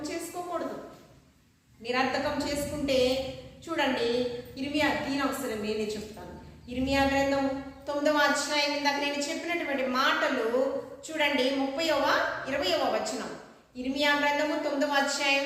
చేసుకోకూడదు. నిరర్థకం చేసుకుంటే చూడండి, ఇర్మియా తీనవసరం నేనే చెప్తాను. ఇర్మియా గ్రంథం 9వ అధ్యాయం, ఇందాక నేను చెప్పినటువంటి మాటలు చూడండి, 20వ వచనం. ఇర్మియా గ్రంథము 9వ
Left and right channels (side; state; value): both; identical; correlation 1.00